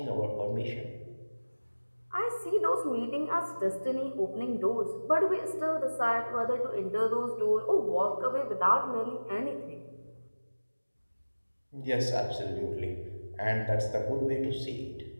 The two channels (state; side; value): inverted; both; correlation -1.00